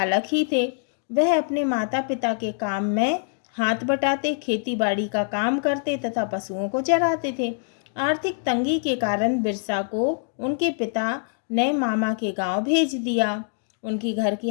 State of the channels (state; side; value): silent; right; digital silence